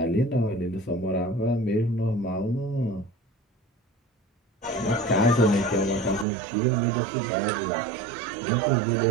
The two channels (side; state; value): left; drops out; at 6.2 s